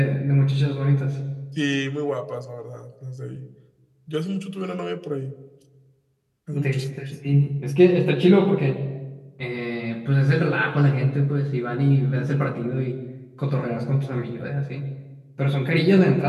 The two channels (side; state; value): both; identical; correlation 1.00